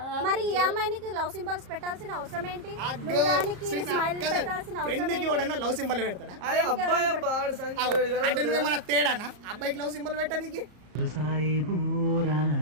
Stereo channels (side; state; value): left; late; 34 ms